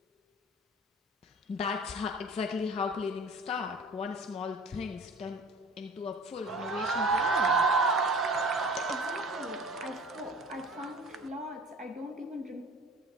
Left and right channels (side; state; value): both; normal; correlation 0.42